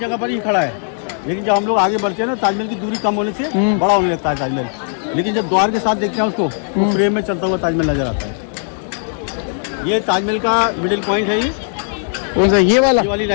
पर ही खड़ा है। लेकिन जब हम लोग आगे बढ़ते हैं ना, ताजमहल की दूरी कम होने से बड़ा होने लगता है ताजमहल। लेकिन जब द्वार के साथ देखते हैं उसको, तो फ्रेम में चलता हुआ ताजमहल नजर आता है। ये ताजमहल का मिडिल पॉइंट है। ये कौन सा? ये वाली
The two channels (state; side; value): silent; right; digital silence